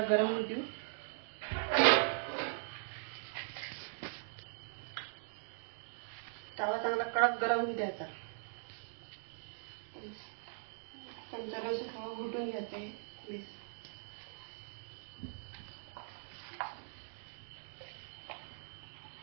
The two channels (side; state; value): left; silent; digital silence